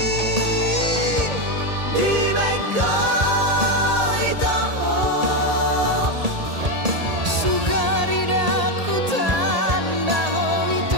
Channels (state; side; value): late; left; 1.8 ms